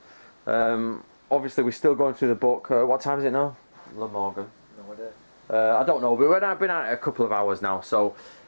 Obviously we're still going through the book. What time is it now? The Morgan. No idea. I don't know, but I've been at it a couple of hours now, so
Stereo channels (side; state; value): both; inverted; correlation -1.00